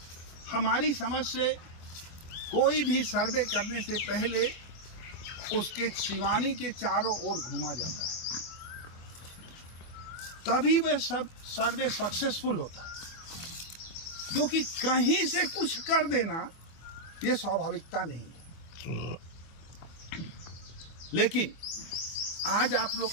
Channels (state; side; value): late; right; 24 ms